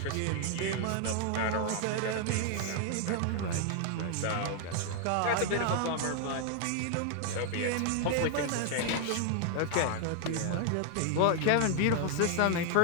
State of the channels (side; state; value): both; different; correlation 0.00